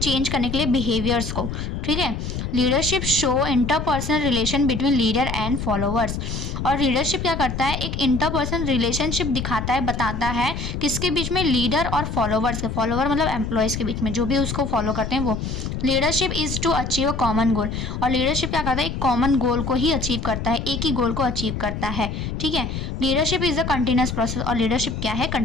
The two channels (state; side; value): noise; left; rumble, 4 dB below the sound